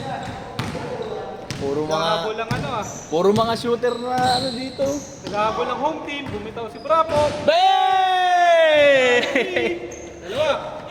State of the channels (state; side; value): identical; both; correlation 1.00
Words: Puro Naghahabol mga lang ano ah. puro mga shooter na ano dito. Naghahabol ng home team, bumitaw si Bravo. Bang! Dalawa.